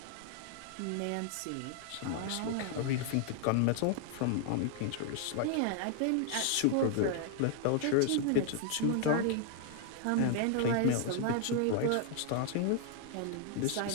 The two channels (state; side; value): different; both; correlation 0.00